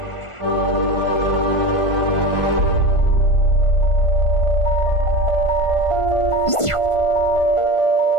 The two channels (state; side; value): late; right; 1.4 ms